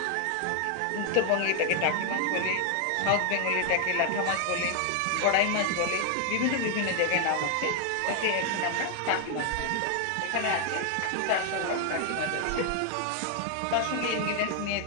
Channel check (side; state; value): both; different; correlation 0.00